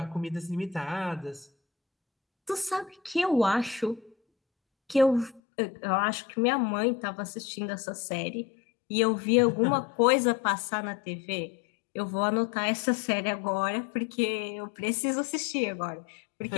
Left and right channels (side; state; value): right; drops out; at 5.4 s